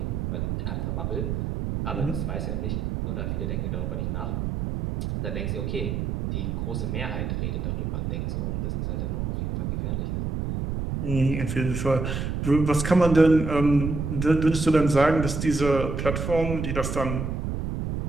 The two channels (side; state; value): right; noise; rumble, 2 dB below the sound